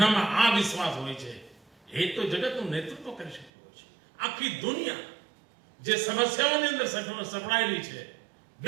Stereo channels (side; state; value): left; drops out; at 3.5 s